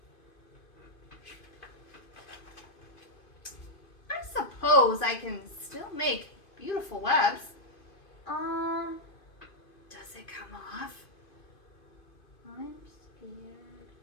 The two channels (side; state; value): right; late; 2.5 ms